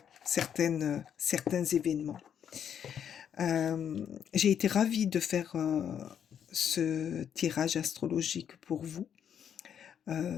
certains événements. J'ai été ravie de faire ce tirage astrologique pour vous.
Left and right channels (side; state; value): right; quieter; 8.6 dB